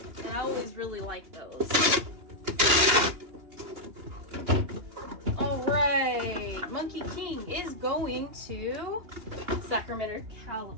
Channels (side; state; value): left; late; 2.9 ms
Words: I always really liked those. Alright, Monkey King is going to Sacramento,